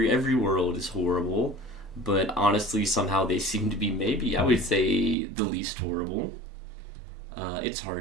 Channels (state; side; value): drops out; left; at 5.2 s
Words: world is horrible, but honestly, somehow they seem to be maybe I would say the least horrible. It's